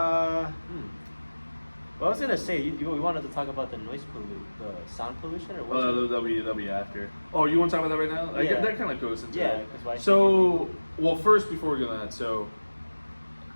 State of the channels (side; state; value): both; inverted; correlation -1.00